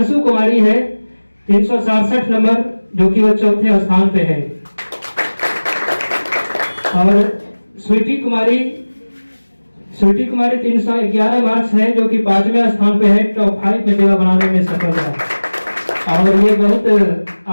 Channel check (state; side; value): inverted; both; correlation -1.00